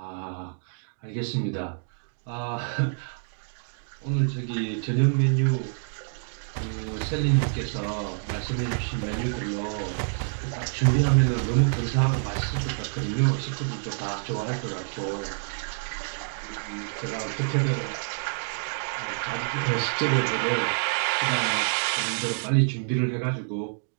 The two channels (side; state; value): left; silent; digital silence